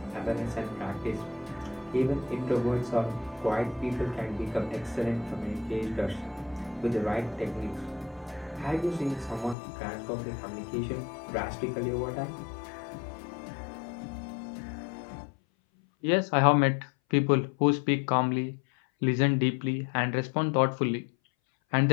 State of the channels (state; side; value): drops out; right; at 9.6 s